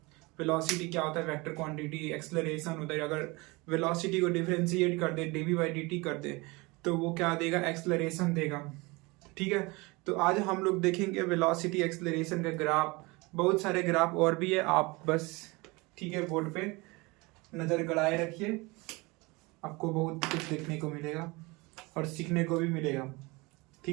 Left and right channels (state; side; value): quieter; left; 24.9 dB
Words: वेलोसिटी क्या होता है, वेक्टर क्वांटिटी। एक्सेलरेशन होता है, अगर वेलोसिटी को डिफरेंशिएट कर दे, डीवी बाई डी टी कर दे, तो वो क्या देगा, एक्सेलरेशन देगा। ठीक है, तो आज हम लोग देखेंगे वेलोसिटी एक्सेलरेशन का ग्राफ। बहुत सारे ग्राफ और भी है, आप बस ठीक है बोर्ड पे नज़र गड़ाए रखिए, आपको बहुत कुछ देखने को मिलेगा और सीखने को भी मिलेगा।